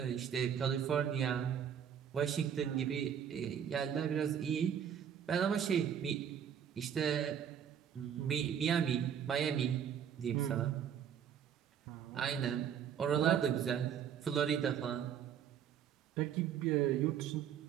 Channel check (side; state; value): left; quieter; 8.6 dB